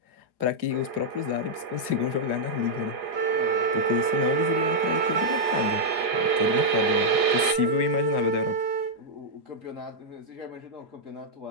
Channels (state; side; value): late; left; 4.9 ms